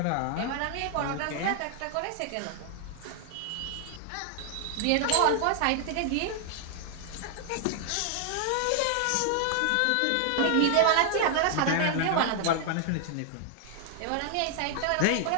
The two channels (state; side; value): different; both; correlation 0.00